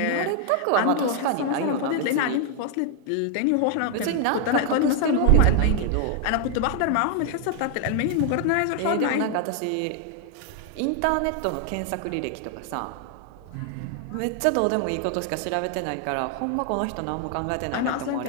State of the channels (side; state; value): both; different; correlation 0.00